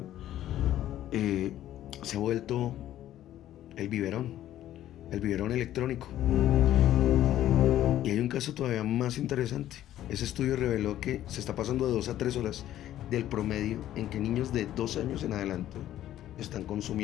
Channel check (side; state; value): right; quieter; 12.7 dB